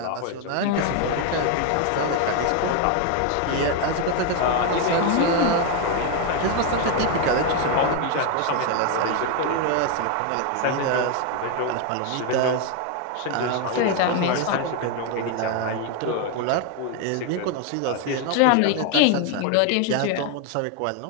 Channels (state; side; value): different; both; correlation 0.01